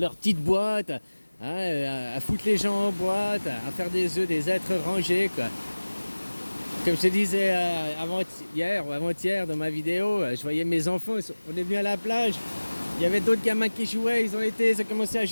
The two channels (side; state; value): both; inverted; correlation -1.00